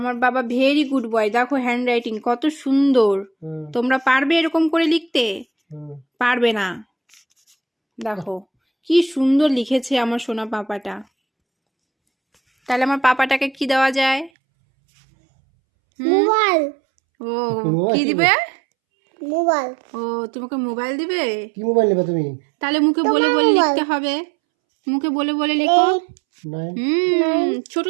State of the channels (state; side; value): drops out; left; at 14.3 s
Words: বাবা ভেরি গুড বয়, দেখো হ্যান্ড রাইটিং কত সুন্দর। হুম তোমরা পারবে এরকম করে লিখতে? হুম। পারবে না। দেখো কি সুন্দর লিখেছে আমার সোনা পাপাটা। তাহলে আমার পাপাটাকে কি দেওয়া যায়? মোবাইল ও কি দিবে? মোবাইল ও তোমাকে মোবাইল দিবে? কি মোবাইল নেবে তুমি? তাহলে মুখে বলে বলে লিখতে হবে, মুখে বলে বলে লিখো। 9 ছোট